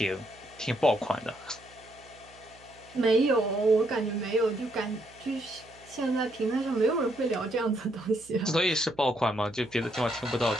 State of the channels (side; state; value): right; noise; hum, 26 dB below the sound